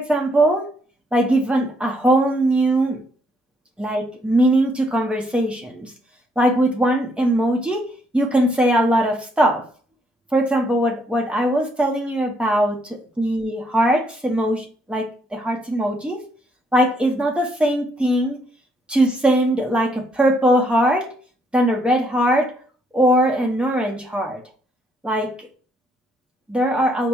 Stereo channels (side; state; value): both; normal; correlation 0.71